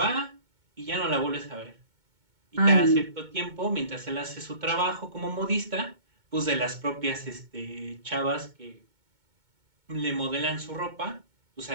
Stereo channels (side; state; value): left; late; 2.2 ms